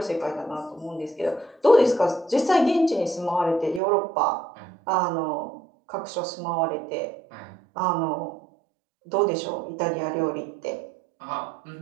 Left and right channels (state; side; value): drops out; left; at 3.8 s